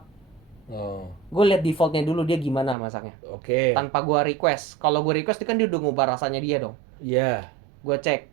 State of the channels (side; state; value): left; drops out; at 2.8 s